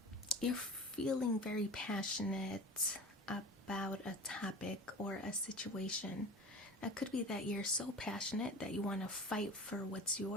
you're feeling very passionate about a topic or a situation. It could be that you're so passionate that you want to fight for what's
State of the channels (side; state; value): both; normal; correlation 0.35